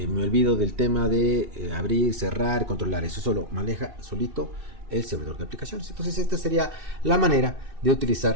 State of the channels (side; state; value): left; late; 2.6 ms